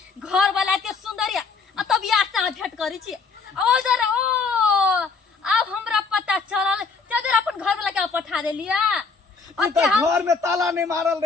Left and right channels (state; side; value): quieter; right; 4.7 dB